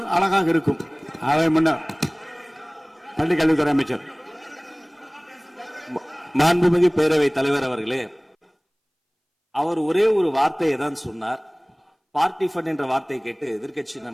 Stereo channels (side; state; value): both; identical; correlation 1.00